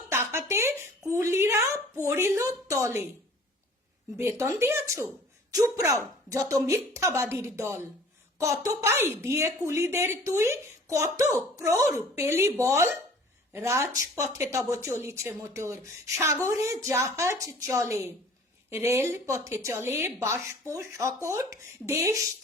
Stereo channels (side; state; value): both; normal; correlation 0.49